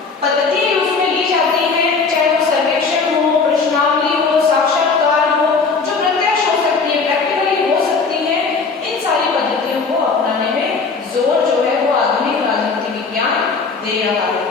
दे रहा है।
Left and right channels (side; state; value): right; quieter; 4.6 dB